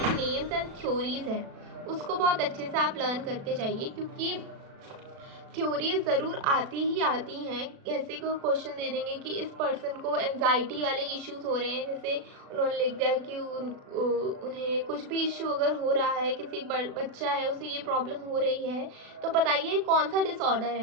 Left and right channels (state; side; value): late; left; 36 ms